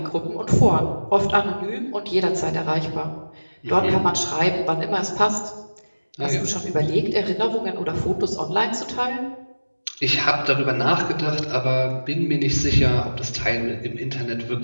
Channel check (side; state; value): both; inverted; correlation -1.00